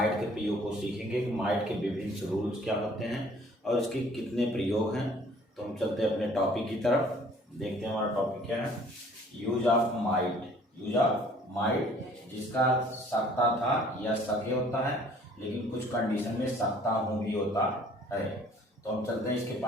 के प्रयोग को सीखेंगे कि माइट के विभिन्न रूल्स क्या होते हैं और इसके कितने प्रयोग हैं। तो हम चलते हैं अपने टॉपिक की तरफ, देखते हैं हमारा टॉपिक क्या है। यूज ऑफ माइट जिसका सकता था या सके होता है, लेकिन कुछ कंडीशन में सकता हूँ भी होता है। तो हम चलते हैं इसके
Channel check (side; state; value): both; normal; correlation 0.55